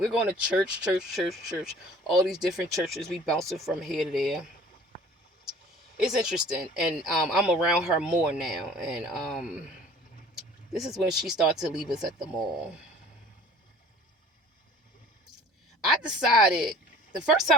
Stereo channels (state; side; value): normal; both; correlation 0.48